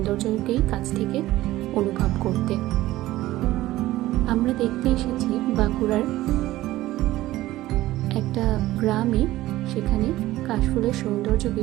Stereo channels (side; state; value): left; quieter; 16.2 dB